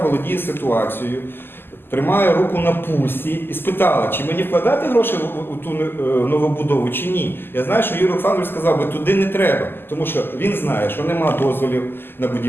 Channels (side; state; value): right; late; 0.10 ms